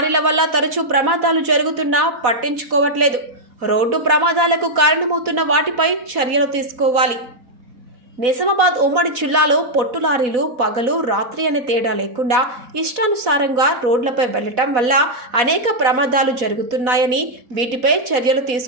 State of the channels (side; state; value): left; late; 4.1 ms